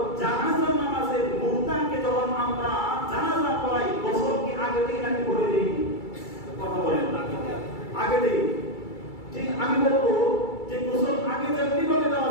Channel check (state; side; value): late; right; 2.3 ms